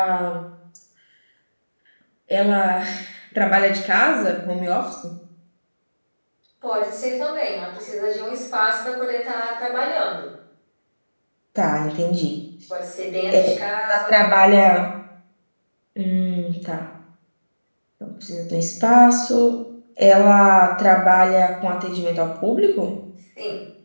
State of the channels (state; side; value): inverted; both; correlation -1.00